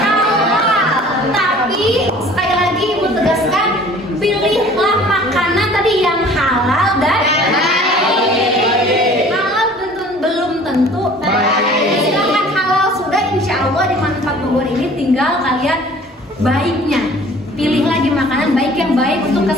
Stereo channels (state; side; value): normal; both; correlation 0.49